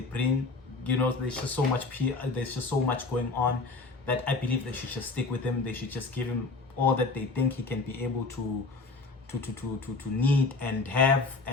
bring? You know, there's just so much there's just so much going on that I believe they should just stick with him. They should just give him all that they think he can be able to need and have,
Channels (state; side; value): quieter; right; 3.8 dB